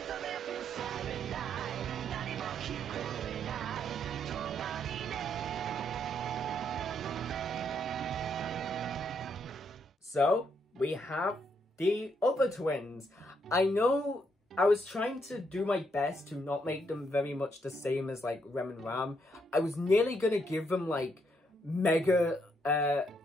So, we have the other twins. I know I was trying to do my best to not make them very much the same as, like, Rem and Ram. I was nearly gonna give them, like, Mega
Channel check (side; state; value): both; normal; correlation 0.75